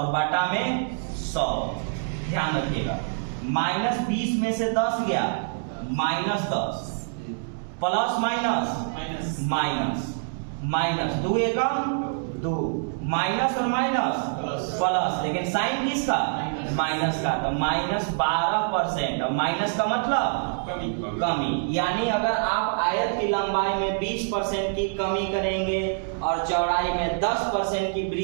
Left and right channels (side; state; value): left; silent; digital silence